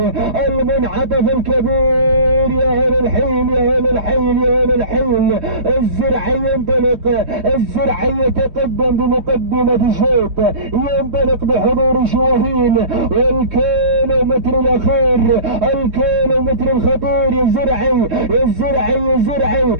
المنعطف الكبير. يا أهل الحين يا أهل الحين يا أهل الحين. الزرعي ينطلق، الزرعي يتقدم بمقدمة الشوط، ينطلق بحضور شواهين. والكيلومتر الأخير، الكيلومتر الخطير. يا زرعي يا زرعي يا زرعي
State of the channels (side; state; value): left; late; 3.2 ms